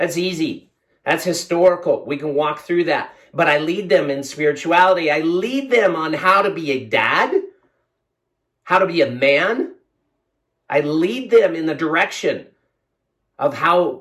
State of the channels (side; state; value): both; identical; correlation 1.00